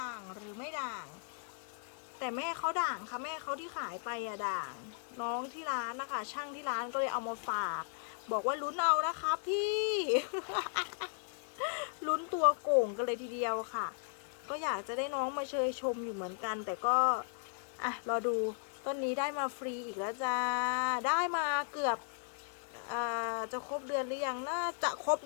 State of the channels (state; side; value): silent; right; digital silence